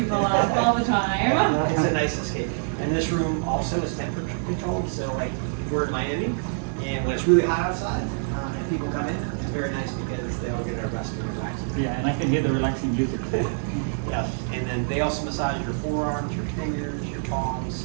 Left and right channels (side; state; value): left; silent; digital silence